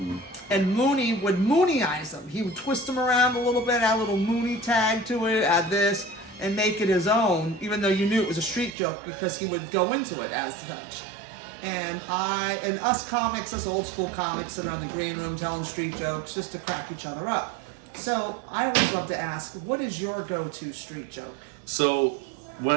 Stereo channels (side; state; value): left; drops out; at 8.8 s